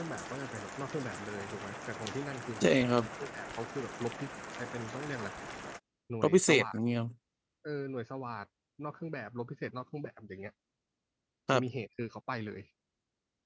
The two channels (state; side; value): identical; both; correlation 1.00